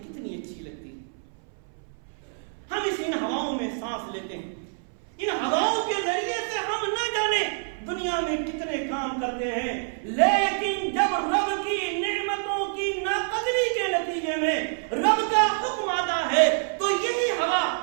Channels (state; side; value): silent; left; 59 dB below the other